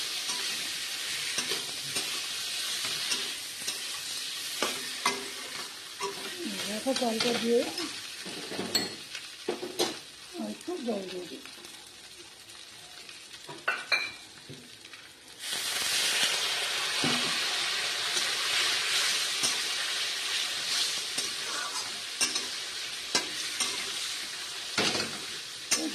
রাখা চালটা দিয়ে একটু জল দিয়ে দিই।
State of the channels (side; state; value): both; identical; correlation 1.00